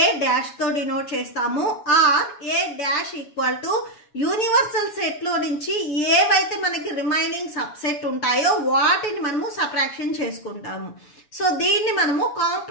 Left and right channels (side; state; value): right; late; 7.1 ms